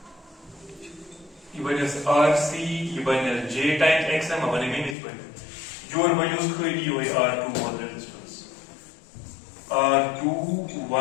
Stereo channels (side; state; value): right; drops out; at 5.0 s